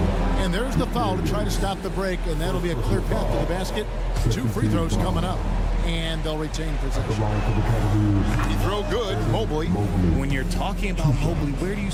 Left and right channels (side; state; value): both; identical; correlation 1.00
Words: And there's the foul to try to stop the break, and that'll be a clear path to the basket. 2 free throws coming up, and they'll retain possession. He throw good, Mobley. When you're talking about Mobley, where do you